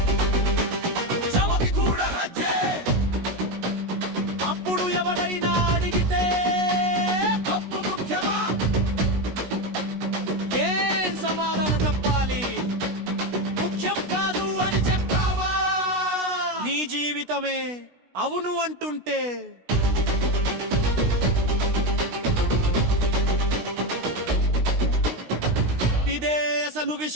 చమకి కూడా హజ్జే. అప్పుడు ఎవరైనా అడిగితే పప్పు ముఖ్యమా? ఏం సమాధానం చెప్పాలి? ముఖ్యం కాదు అని చెప్తావా? నీ జీవితమే అవును అంటుంటే ఇదే అసలు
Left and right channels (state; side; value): late; left; 16 ms